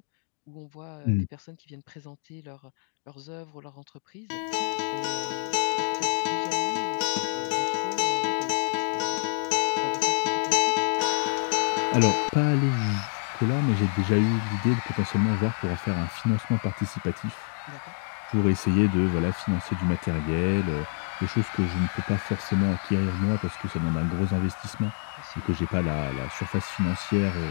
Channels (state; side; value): silent; right; digital silence